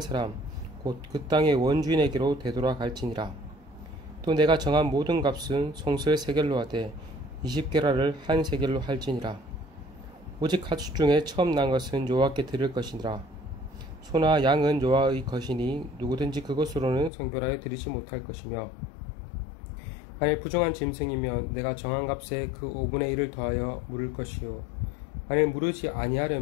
곧 그 땅의 원주인에게로 되돌아갈지니라. 또 내가 정한 모든 값은 송수의 세겔로 하되 20게라를 한 세겔로 할지니라. 오직 가축 중에 처음 난 것은 여호와께 드릴 것이니라. 소나 양은 여호와의 것이니 누구든지 그것으로는 성별하여 드리지 못할 것이며 만일 부정한 짐승이면 내가 정한 값에 그 5분의 1을 더하여 물을 것이요 만일 무르지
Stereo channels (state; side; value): drops out; right; at 17.1 s